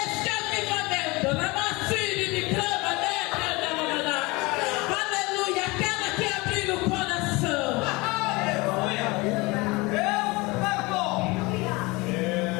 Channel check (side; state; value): right; quieter; 24.3 dB